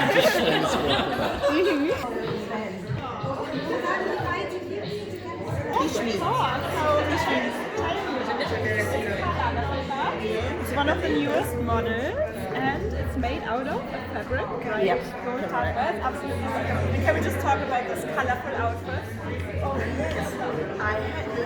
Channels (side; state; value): both; identical; correlation 1.00